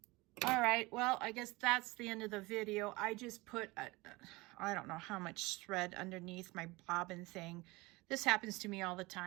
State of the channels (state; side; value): quieter; left; 22.6 dB